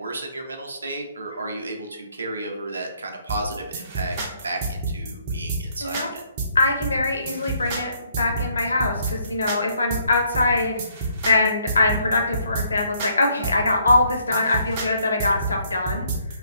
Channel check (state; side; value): inverted; both; correlation -0.68